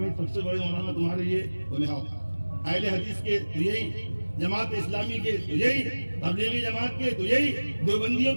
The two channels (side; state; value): both; inverted; correlation -1.00